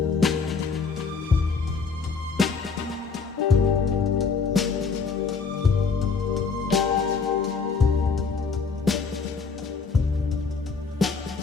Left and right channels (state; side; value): quieter; right; 5.0 dB